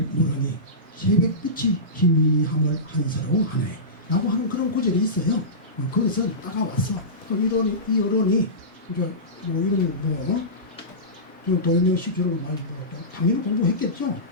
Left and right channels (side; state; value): both; normal; correlation -0.19